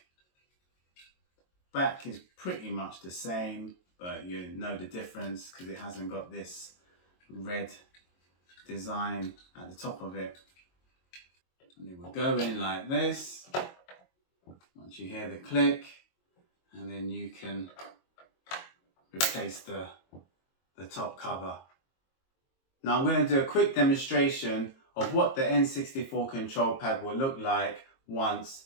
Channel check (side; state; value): right; late; 22 ms